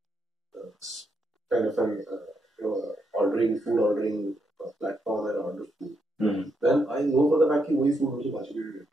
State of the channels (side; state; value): both; normal; correlation 0.79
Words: a kind of an food ordering platform and order food. Mm-hmm. Then I know for the fact that वही food मुझे बाजी में